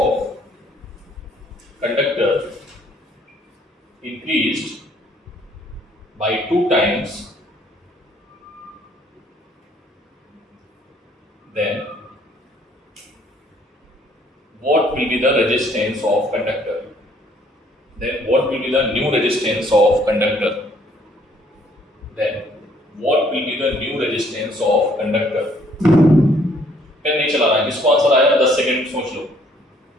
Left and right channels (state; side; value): normal; both; correlation 0.63